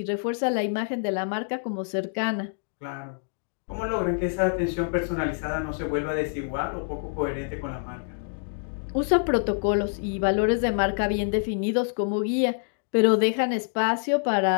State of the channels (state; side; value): silent; right; digital silence